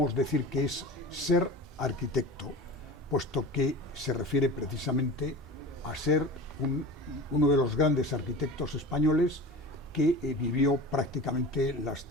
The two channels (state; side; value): normal; both; correlation 0.34